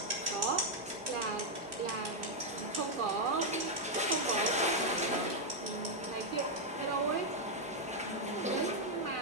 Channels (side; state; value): both; normal; correlation -0.01